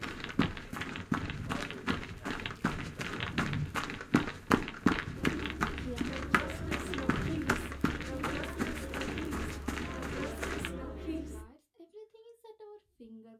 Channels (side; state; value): both; identical; correlation 1.00